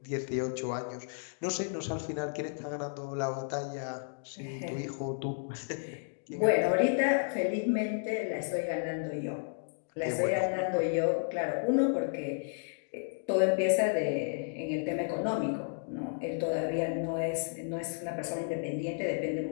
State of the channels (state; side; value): silent; right; digital silence